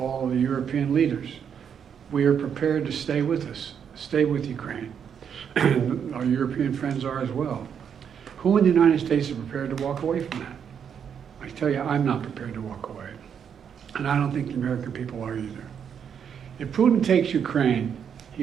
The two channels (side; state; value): left; quieter; 7.8 dB